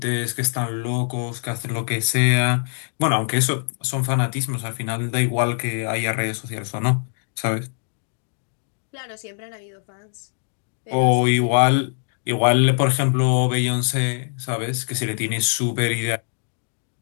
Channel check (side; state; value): right; silent; digital silence